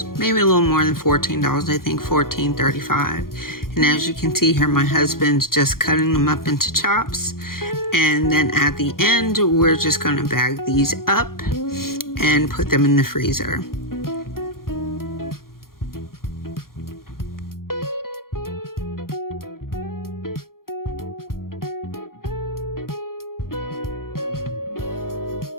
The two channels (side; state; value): right; late; 0.92 ms